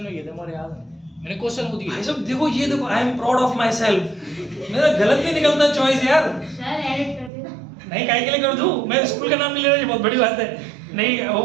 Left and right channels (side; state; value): left; drops out; at 7.3 s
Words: में किए थे, मुझे याद है, मैंने क्वेश्चन खुद किया। भाई साहब देखो, ये देखो, I am proud of my self, मेरा गलत नहीं निकलता चॉइस यार। सर एडिट कर देना। नहीं, काहे के लिए कर दूं, मैं स्कूल का नाम नहीं ले रहा, ये बहुत बड़ी बात है। नहीं, वो